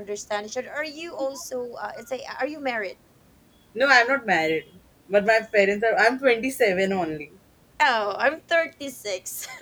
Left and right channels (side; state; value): both; identical; correlation 1.00